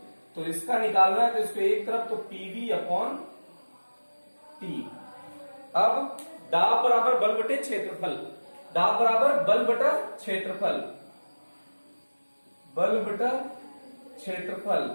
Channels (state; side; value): inverted; both; correlation -1.00